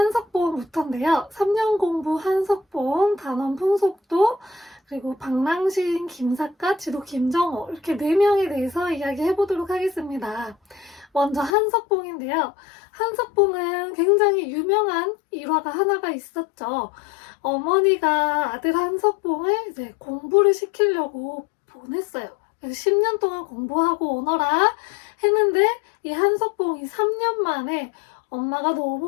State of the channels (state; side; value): drops out; right; at 11.6 s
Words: 3년 공부 한석봉, 단원 풍속도, 그리고 방랑시인 김사과, 지도 김정호 이렇게 4명에 대해서 이야기해보도록 하겠습니다. 먼저 한석봉인데요. 한석봉은 굉장히 유명한 일화가 하나가 있었죠. 어머니가 아들 한석봉을 이제 공부를 시키려고 보냈어요. 그래서 10년 동안 공부하고 오너라 했는데 이 한석봉이 3년 만에 엄마가